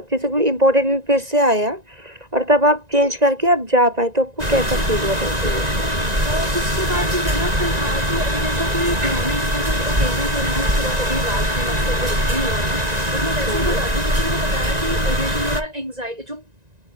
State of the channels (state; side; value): late; left; 1.9 ms